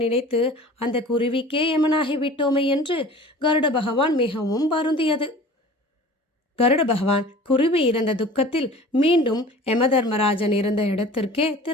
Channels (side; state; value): both; normal; correlation 0.43